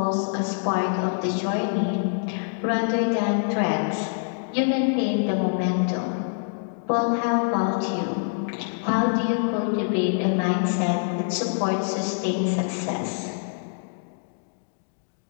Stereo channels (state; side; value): silent; right; digital silence